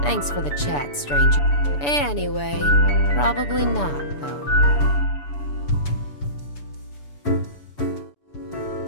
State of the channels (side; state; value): right; late; 6.9 ms